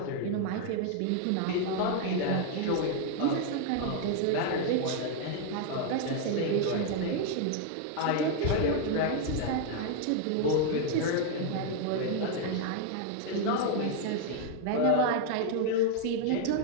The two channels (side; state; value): both; different; correlation 0.00